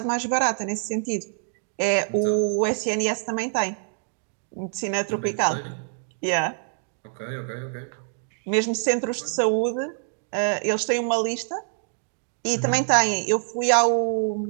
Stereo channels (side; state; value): left; silent; digital silence